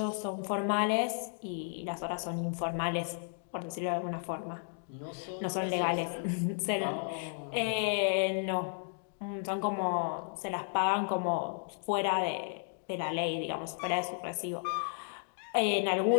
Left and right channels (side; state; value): right; silent; digital silence